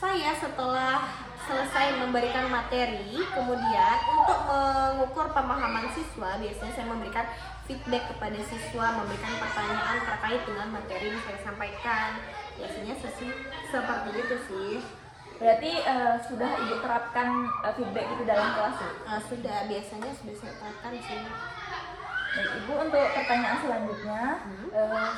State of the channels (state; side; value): identical; both; correlation 1.00